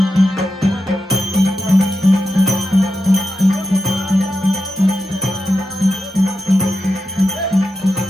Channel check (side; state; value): both; normal; correlation 0.88